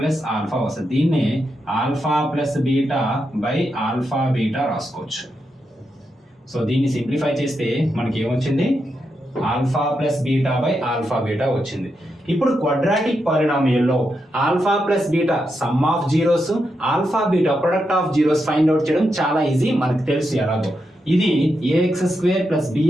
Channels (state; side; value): normal; both; correlation 0.85